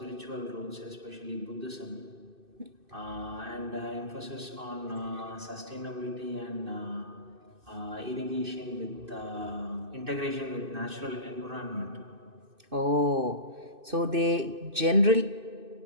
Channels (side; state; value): left; late; 2.6 ms